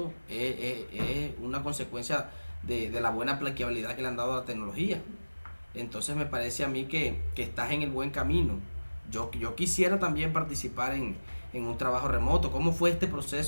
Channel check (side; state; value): both; inverted; correlation -1.00